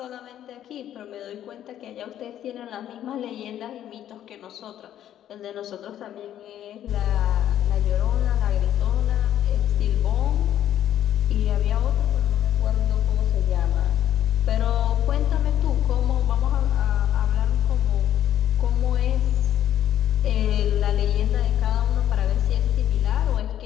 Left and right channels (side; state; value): right; quieter; 11.3 dB